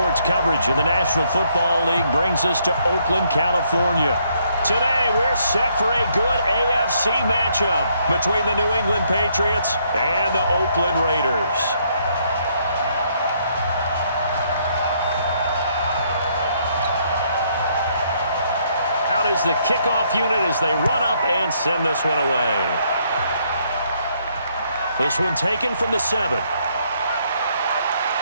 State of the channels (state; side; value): inverted; both; correlation -0.71